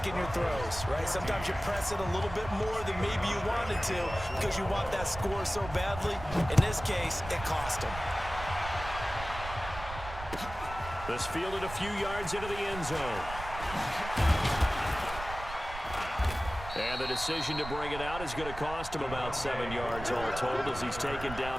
your throws, right? Sometimes you press it a little bit more than maybe you wanted to because you want that score so badly. In this case, it cost them. This fielded a few yards into the end zone. And the decision to bring it out is going to cost him about 7 yards all told as he's taken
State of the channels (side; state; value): right; noise; rumble, 11 dB below the sound